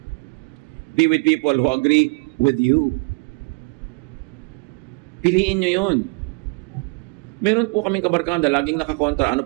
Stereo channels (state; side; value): quieter; left; 31.4 dB